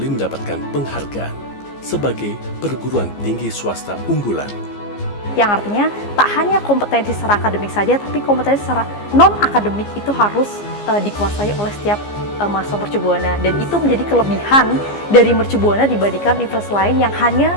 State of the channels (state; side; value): late; right; 15 ms